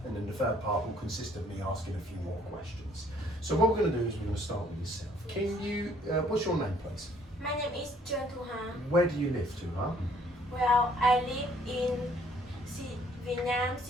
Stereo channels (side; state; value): both; normal; correlation 0.62